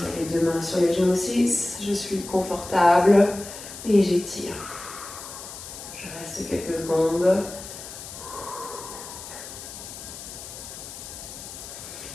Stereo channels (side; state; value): left; noise; hiss, 12 dB below the sound